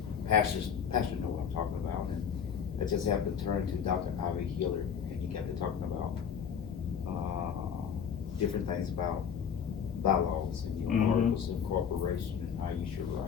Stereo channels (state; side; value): quieter; right; 7.5 dB